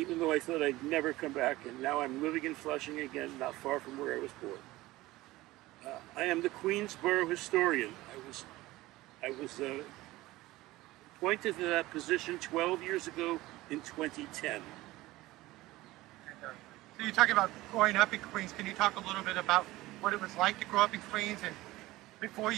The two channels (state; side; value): quieter; left; 18.3 dB